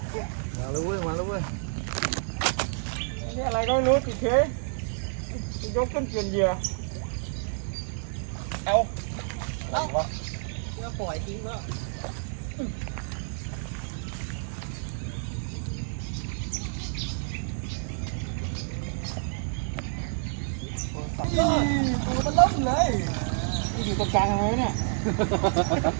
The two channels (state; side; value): silent; left; digital silence